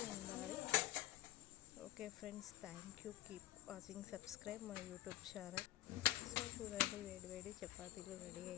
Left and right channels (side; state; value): right; quieter; 14.6 dB